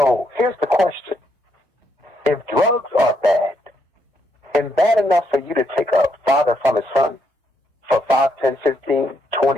here's the question. If drugs are bad, and bad enough for you to take a father from his son for 5, 10, 15,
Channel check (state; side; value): normal; both; correlation 0.75